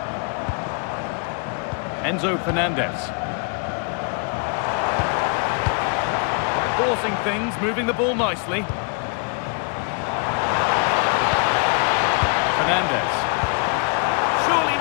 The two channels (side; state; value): right; quieter; 39.5 dB